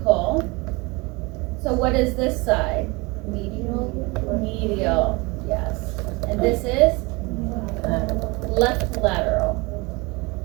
So what is this side? Medial, yes. And this is left lateral.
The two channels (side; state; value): left; quieter; 25.8 dB